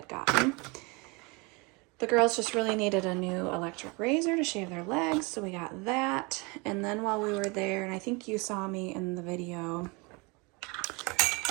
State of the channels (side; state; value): left; quieter; 28.1 dB